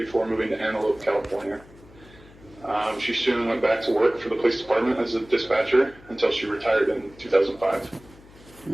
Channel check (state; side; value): noise; left; hum, 23 dB below the sound